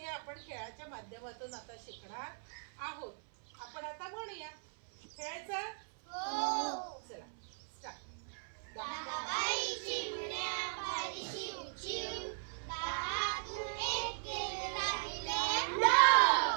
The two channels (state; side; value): silent; left; 53 dB below the other